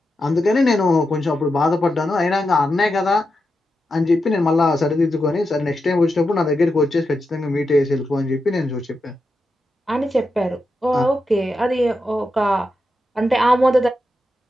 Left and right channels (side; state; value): both; normal; correlation 0.87